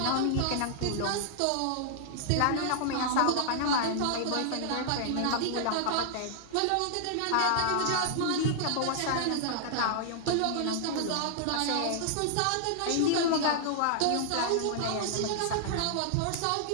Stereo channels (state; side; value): different; both; correlation -0.01